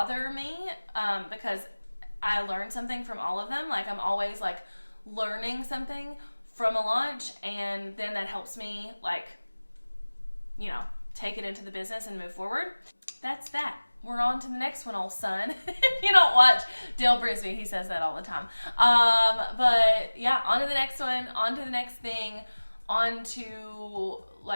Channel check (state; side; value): inverted; both; correlation -1.00